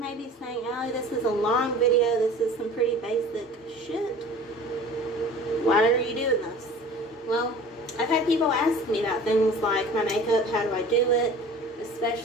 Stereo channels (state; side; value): normal; both; correlation 0.43